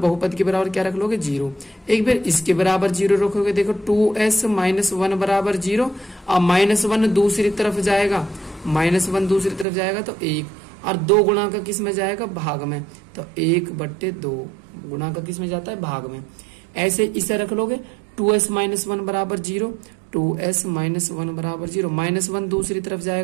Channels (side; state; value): left; drops out; at 9.7 s